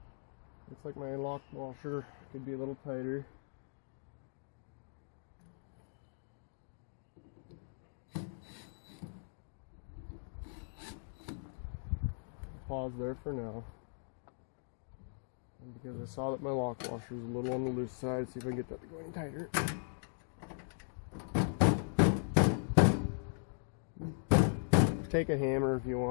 Looks like my lock washer could be a little tighter. Pause there for now. And because I saw that my lock washer was a little on the loose side, see if I can get that to go any tighter. Take a hammer if you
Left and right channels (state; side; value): silent; right; digital silence